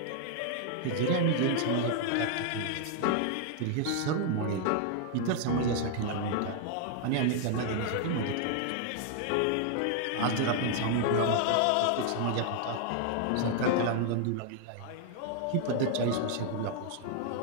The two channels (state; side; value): different; both; correlation 0.00